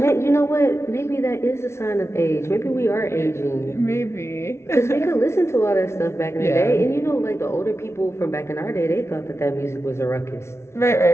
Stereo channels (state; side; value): late; right; 0.13 ms